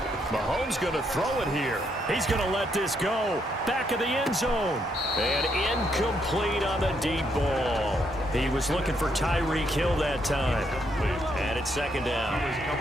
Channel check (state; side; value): normal; both; correlation 0.75